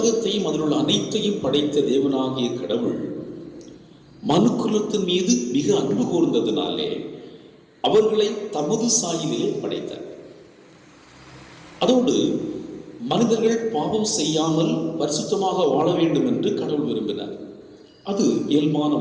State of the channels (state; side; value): identical; both; correlation 1.00